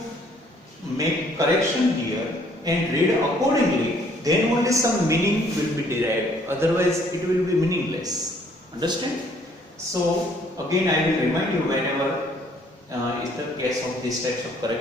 make correction here and read accordingly, then only some meaning will be derived. Otherwise, it will be meaningless. Understand? So, again, I will remind you whenever is the case of these types of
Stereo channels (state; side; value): normal; both; correlation 0.62